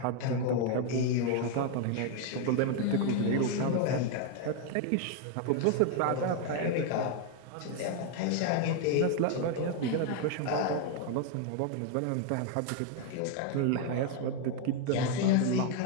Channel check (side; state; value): both; different; correlation 0.01